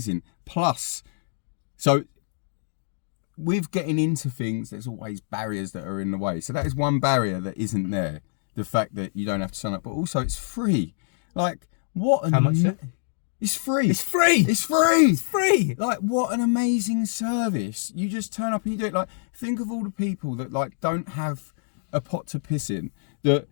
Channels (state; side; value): silent; right; digital silence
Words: Plus, so with getting into things, there's always barriers that are in the way. So that is one barrier that isn't there. The fact that you don't have to sign up, but also it's free. Like, what? How much? It's free. It's free. It's free. It's free. Like, what an amazing service. You just turn up and you do it. Like, think of all the people that like don't have a pot to piss in, that